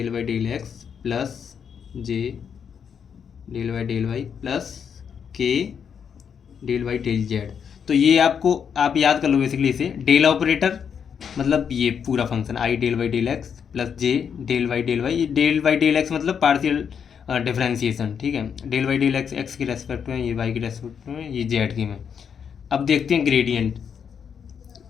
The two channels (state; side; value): quieter; right; 7.3 dB